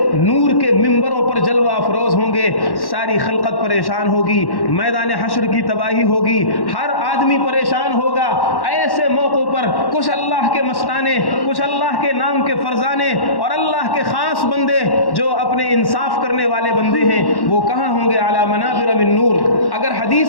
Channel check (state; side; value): late; right; 1.1 ms